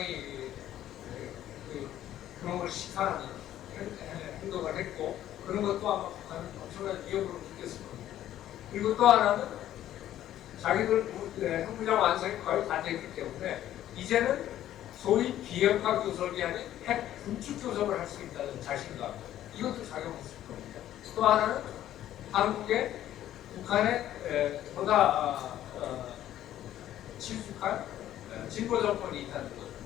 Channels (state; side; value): quieter; right; 12.4 dB